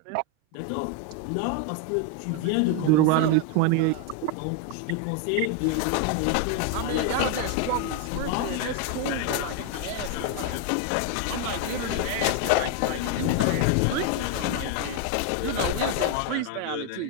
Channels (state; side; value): different; both; correlation 0.01